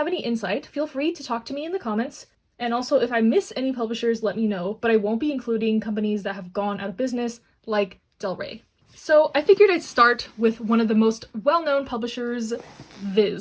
any insight, feel free to talk to me in the comments. And also, if I miss any publishers, let me know, but I won't be including companies that have gone out of business, like Del Rey. So I figured I'd start with one of the most well-known publishers,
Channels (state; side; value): identical; both; correlation 1.00